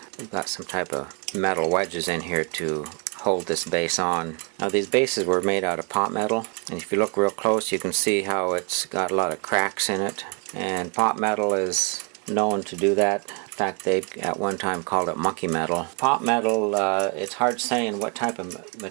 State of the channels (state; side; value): quieter; left; 34.1 dB